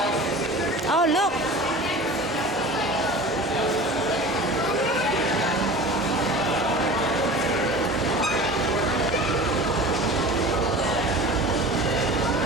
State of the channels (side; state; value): both; normal; correlation 0.37